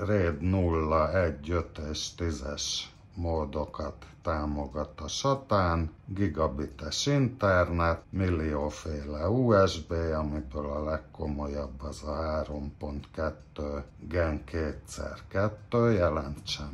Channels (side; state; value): both; identical; correlation 1.00